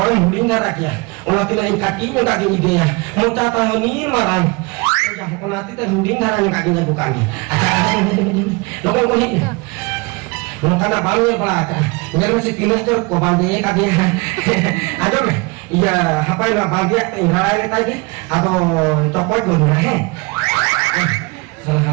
muding darak ya. Ulah tina kaki ni kaki ni dia. Muta tahun ni marang. Jah ko nanti teh muding darak ni kaki ni bukan ni. Acha ni. Lokon ko ni. Maka nak bangun pelaka. Ini masih kilas tu kau bandi kaki. Ada be? Iya, apa yang bagi tinggal kita ini atau copot pun dah. Salah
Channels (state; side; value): quieter; left; 27.0 dB